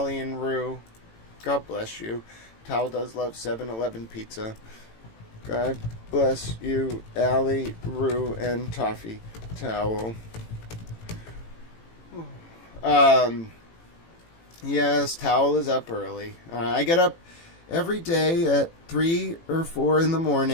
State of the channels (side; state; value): right; late; 18 ms